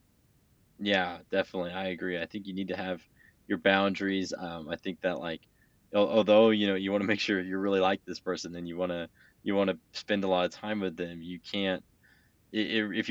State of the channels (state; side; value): identical; both; correlation 1.00